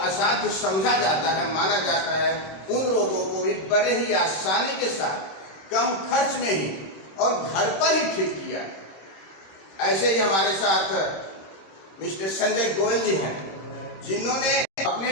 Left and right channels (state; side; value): late; right; 26 ms